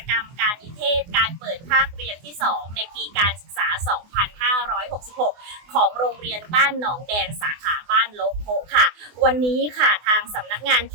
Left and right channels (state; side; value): late; left; 24 ms